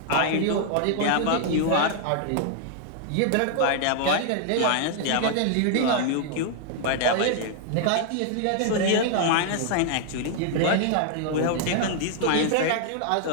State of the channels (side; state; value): both; different; correlation -0.01